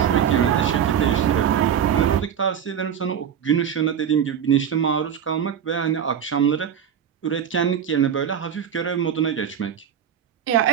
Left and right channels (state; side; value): quieter; left; 8.6 dB